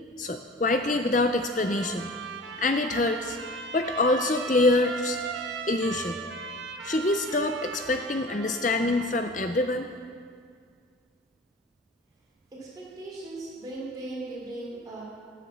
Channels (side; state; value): both; normal; correlation 0.41